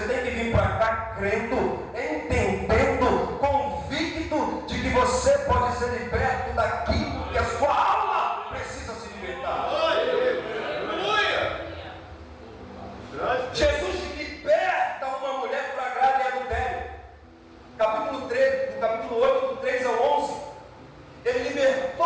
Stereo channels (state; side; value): identical; both; correlation 1.00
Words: tem que vir para cá crendo, entendendo, convicto de que você pode ser liberto daquilo que a sua alma precisa se libertar. Jesus liberta uma mulher flagrada em adultério. Capítulo 3, do capítulo 8, do 3 ao 11. Ele